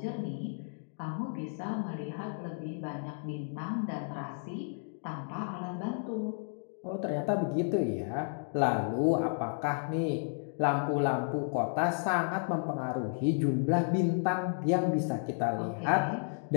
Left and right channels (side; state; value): right; silent; digital silence